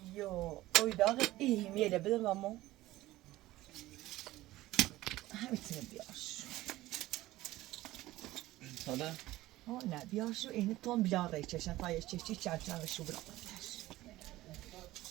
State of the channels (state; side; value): quieter; left; 16.9 dB